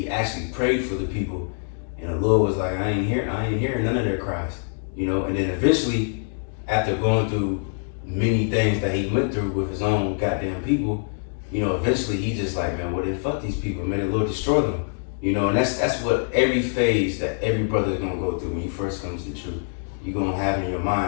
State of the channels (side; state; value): right; silent; 62 dB below the other